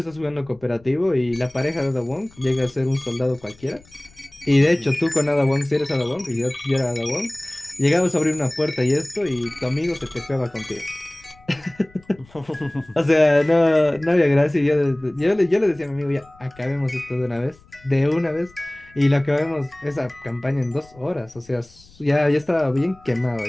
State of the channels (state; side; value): noise; left; rumble, 27 dB below the sound